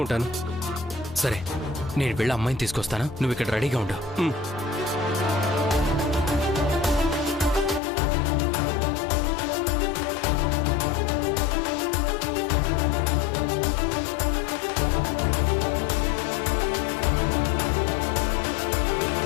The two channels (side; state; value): right; drops out; at 7.8 s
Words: ఉంటాను. సరే, నేను వెళ్ళి అమ్మాయిని తీసుకొస్తాను. నువ్వు ఇక్కడ రెడీగా ఉండు.